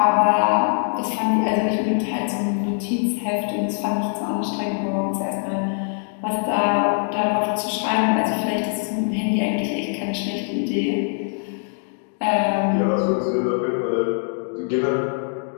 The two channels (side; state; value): right; silent; 64 dB below the other